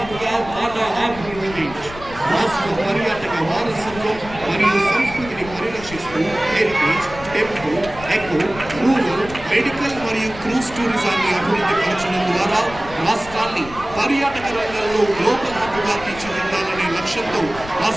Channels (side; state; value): left; noise; rumble, 15 dB below the sound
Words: గా మన ఆంధ్రప్రదేశ్ రాష్ట్ర పర్యాటక వారసత్వం మరియు సంస్కృతిని పరిరక్షిస్తూ heritage, temple, eco, rural, medical మరియు క్రూజ్ టూరిజాన్ని అభివృద్ధి పరచడం ద్వారా రాష్ట్రాన్ని పర్యాటక రంగంలో గ్లోబల్ హబ్ గా తీర్చిదిద్దాలనే లక్ష్యంతో